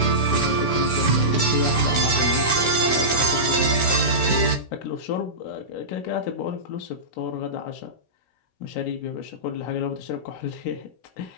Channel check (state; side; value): late; right; 16 ms